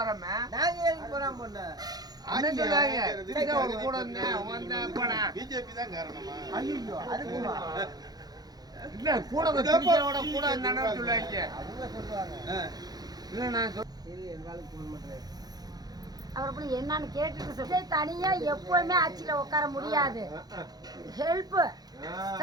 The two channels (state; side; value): late; left; 0.19 ms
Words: நாங்க ஏன் போறாம பண்ண? அண்ணன் சொல்லுவாங்க திருச்சியோட கூட வந்தேன் போனேன். பிஜேபி தான் காரணமா? ஐயோ அதுக்குமா? இல்ல கூட திருச்சியோட கூட வந்தானு சொல்லுவாங்க. அவங்க சொல்லுவாங்க. இல்ல நான் சரி எங்களுக்கு ஃபோன் பண்றேன். அவர் போய் என்னன்னு கேட்டுட்டு சொல்லி தனியா எப்பவுமே ஆட்சியில உட்கார முடியாது. ஹெல்ப்